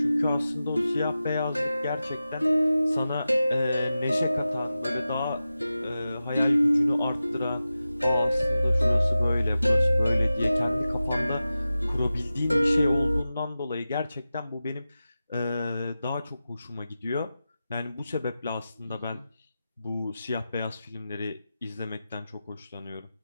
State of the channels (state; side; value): inverted; both; correlation -0.93